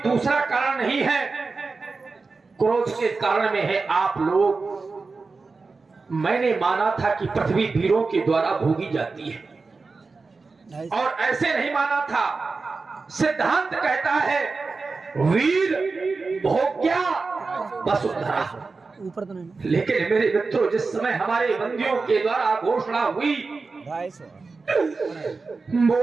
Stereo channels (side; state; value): left; quieter; 4.1 dB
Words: दूसरा कारण नहीं है, क्रोध के कारण में है आप लोग। मैंने माना था कि पृथ्वी वीरों के द्वारा भोगी जाती है, और ऐसे नहीं माना था। सिद्धांत कहता है वीर भोग्या वसुंधरा। लेकिन मेरे मित्रों, जिस समय हमारे बंदियों के द्वारा घोषणा हुई,